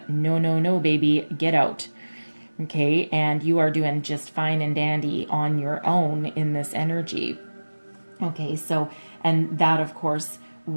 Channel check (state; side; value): inverted; both; correlation -1.00